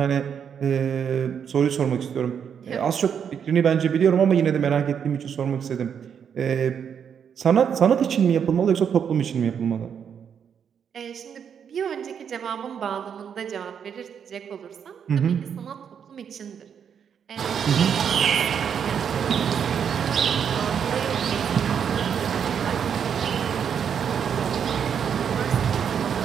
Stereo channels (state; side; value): quieter; left; 7.7 dB